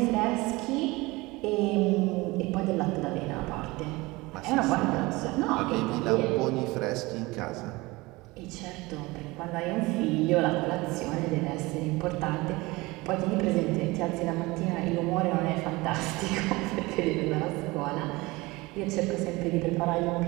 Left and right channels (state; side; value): quieter; left; 22.3 dB